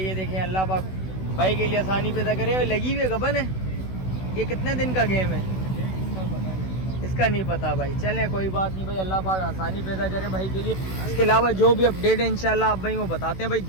ये देखें अल्लाह पाक भाई के लिए आसानी पैदा करे। लगी हुई गबन है, ये कितने दिन का गेम है इसका नहीं पता भाई। चलें कोई बात नहीं भाई, अल्लाह पाक आसानी पैदा करे भाई के लिए। इसके अलावा जो भी अपडेट है इंशाल्लाह आप भाई को बताते हैं भाई।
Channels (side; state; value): right; late; 16 ms